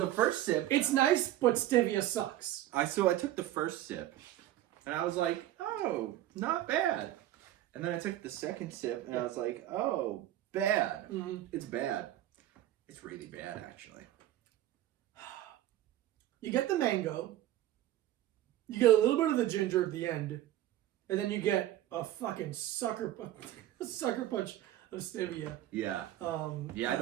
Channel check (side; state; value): left; quieter; 13.5 dB